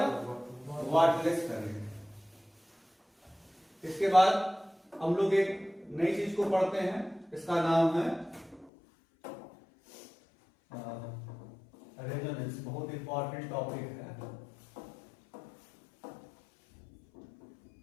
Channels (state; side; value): drops out; right; at 8.7 s